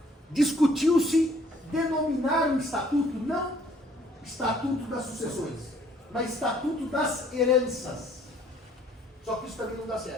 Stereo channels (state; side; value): normal; both; correlation 0.61